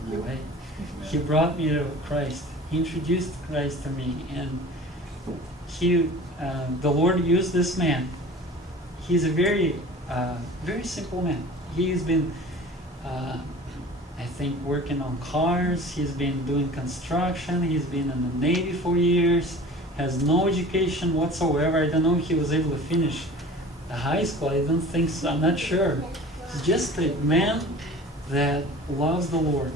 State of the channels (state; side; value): normal; both; correlation 0.41